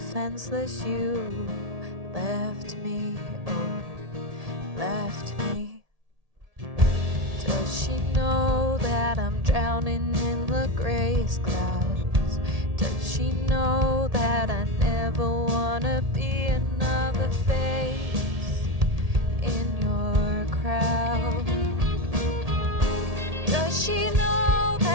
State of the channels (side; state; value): left; late; 1.8 ms